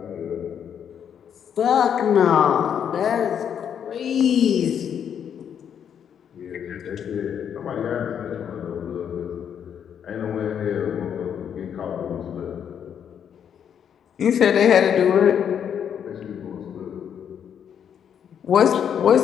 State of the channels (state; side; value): quieter; right; 8.4 dB